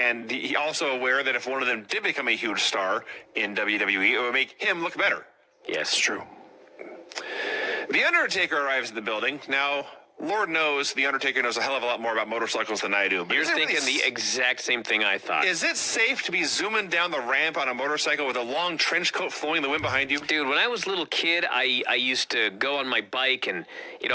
he also aware that if one of them did become a huge star in WWE, it would make him look better. Yes, true. The Undertaker arrives at the building. Now, Lord knows the Undertaker knows a hell of a lot more about motorcycles than I do. But you're thinking the exact same thing I thought. Is it safe to be zooming down the ramp on a motorcycle with a long trench coat flowing in the wind behind you? Dude, when I was a little kid, I used to go on my bike and, you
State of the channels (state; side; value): identical; both; correlation 1.00